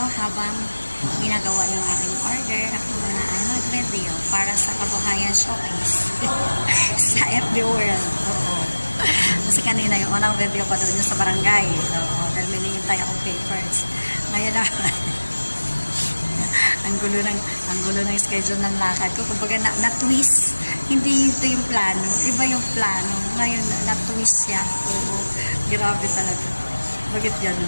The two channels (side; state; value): both; inverted; correlation -1.00